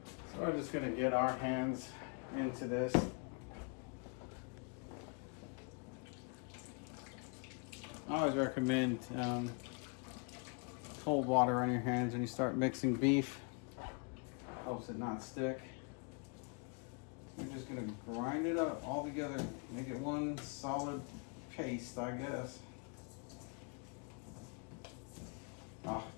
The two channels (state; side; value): quieter; right; 35.8 dB